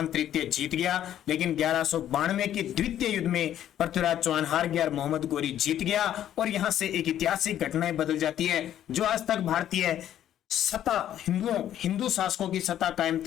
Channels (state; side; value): quieter; right; 11.2 dB